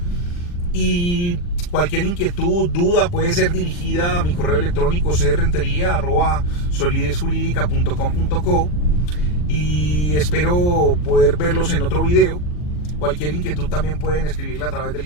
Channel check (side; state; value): right; late; 40 ms